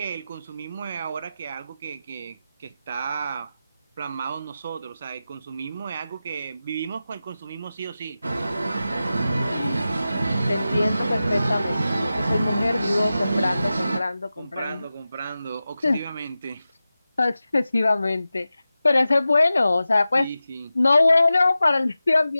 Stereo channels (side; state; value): both; inverted; correlation -0.93